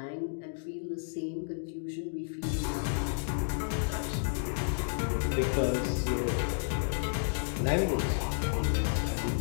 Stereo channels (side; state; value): right; silent; digital silence